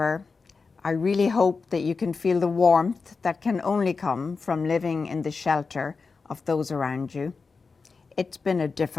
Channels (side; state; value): right; quieter; 4.6 dB